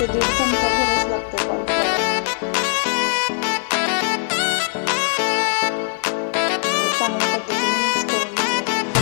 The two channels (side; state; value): right; silent; digital silence